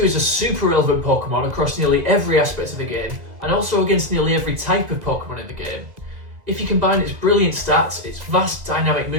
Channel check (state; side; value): late; left; 2.0 ms